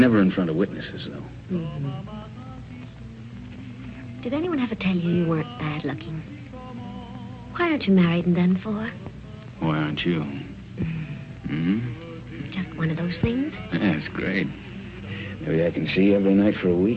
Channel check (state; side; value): identical; both; correlation 1.00